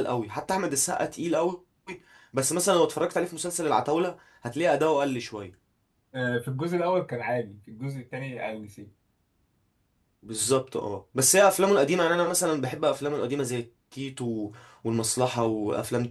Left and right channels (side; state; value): both; identical; correlation 1.00